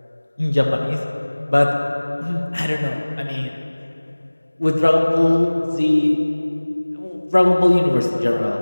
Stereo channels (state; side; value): inverted; both; correlation -1.00